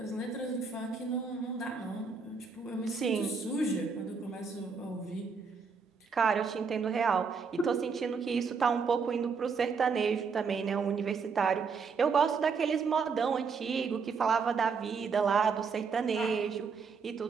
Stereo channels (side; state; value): left; quieter; 5.3 dB